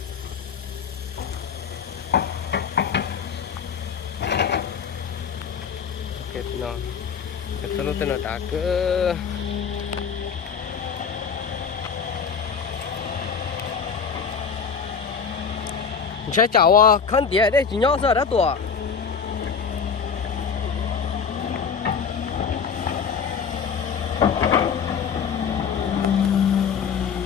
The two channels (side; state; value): right; quieter; 6.4 dB